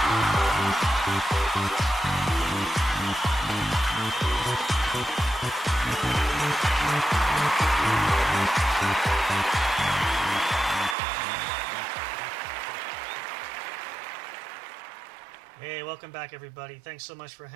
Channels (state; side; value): drops out; left; at 11.0 s